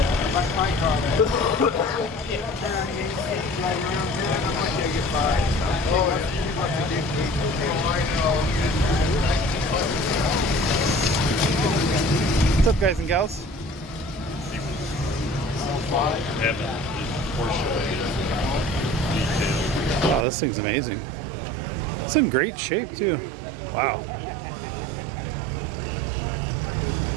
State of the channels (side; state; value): left; drops out; at 20.2 s